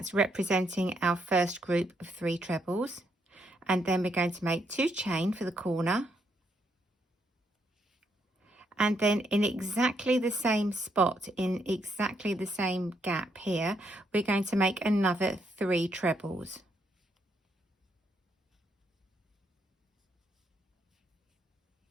representing our first group of 3 trebles. And then we're going to make 2 chain for the corner. And then in exactly the same spot, in exactly the same gap here, we're going to make another 3 trebles.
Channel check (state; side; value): normal; both; correlation 0.75